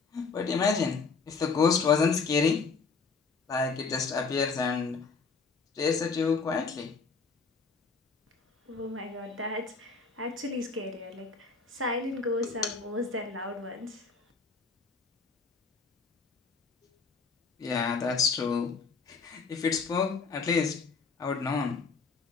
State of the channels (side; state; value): right; quieter; 4.8 dB